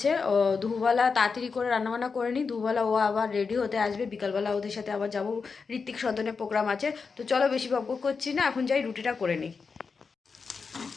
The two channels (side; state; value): right; quieter; 5.1 dB